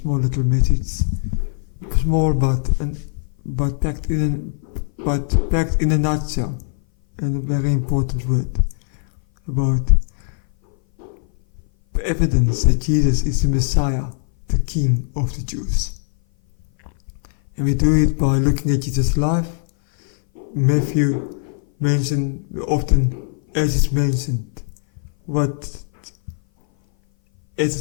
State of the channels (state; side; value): silent; right; 59 dB below the other